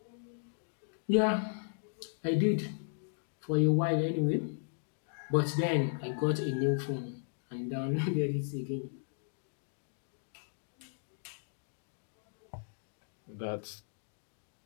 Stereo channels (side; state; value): right; silent; digital silence